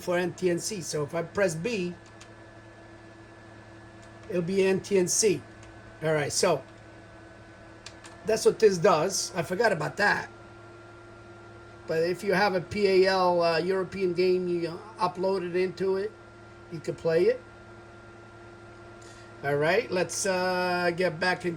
NTNC. So if I press B, it'll be NTNC. All right, so that's what this does. I forgot about that. But if you have a PAL European game, you upload it into it, you can play it. All right, let's get back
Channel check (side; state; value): both; identical; correlation 1.00